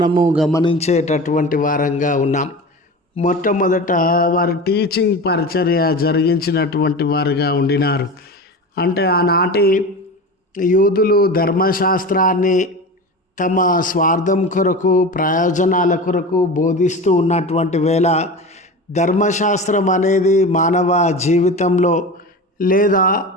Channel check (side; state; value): both; normal; correlation 0.30